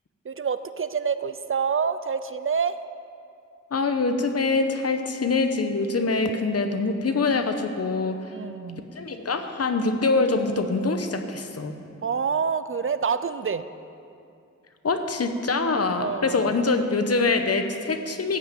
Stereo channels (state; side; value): normal; both; correlation -0.07